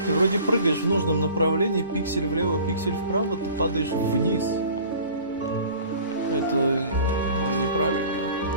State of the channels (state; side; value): inverted; both; correlation -0.45